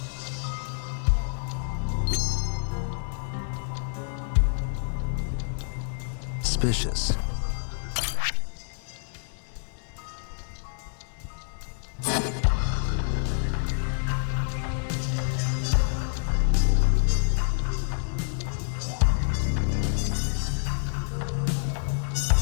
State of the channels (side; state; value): right; silent; digital silence